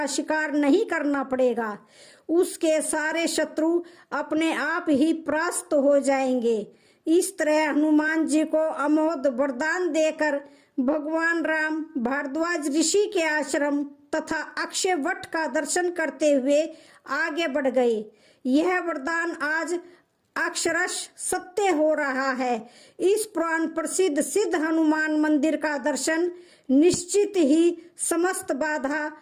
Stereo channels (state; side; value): identical; both; correlation 1.00